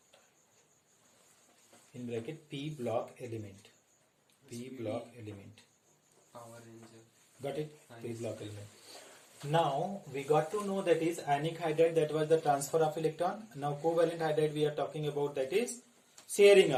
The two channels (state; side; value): identical; both; correlation 1.00